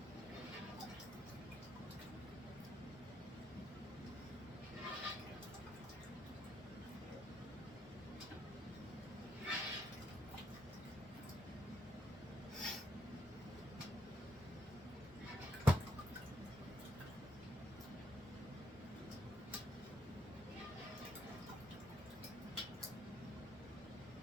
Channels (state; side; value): normal; both; correlation 0.76